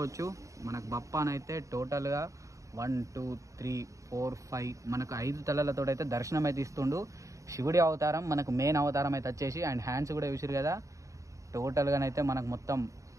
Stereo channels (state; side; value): late; left; 0.15 ms